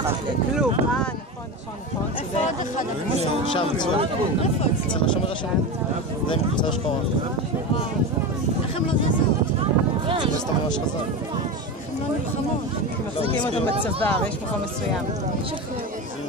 כלום, נכון, שם, אצל השומר השני. זה עם קבוצה שחורה. איך הם לא זזו? זה סתם ממש חזק. הם לא נלחמות. מחזיקים אותם בצוואר, יש מקום מסוים.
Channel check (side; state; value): both; normal; correlation 0.22